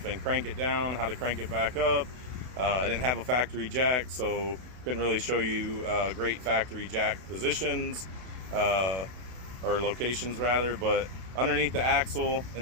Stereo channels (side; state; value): left; late; 32 ms